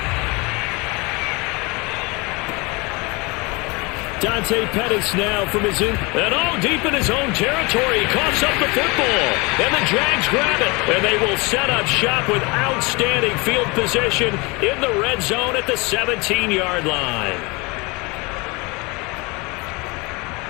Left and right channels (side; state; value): right; quieter; 26.7 dB